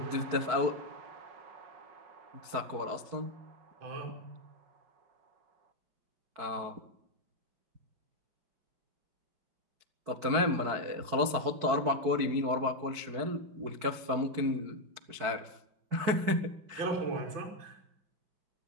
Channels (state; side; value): late; left; 4.6 ms